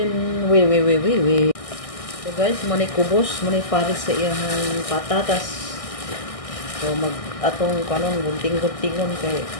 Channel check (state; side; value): late; right; 1.6 ms